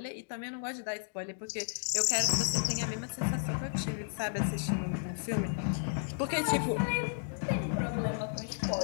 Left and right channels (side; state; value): right; silent; digital silence